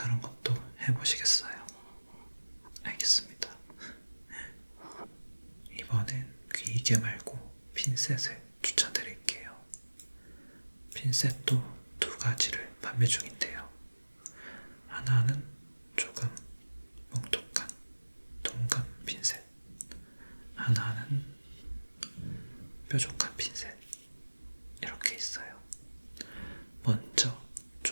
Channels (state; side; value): inverted; both; correlation -1.00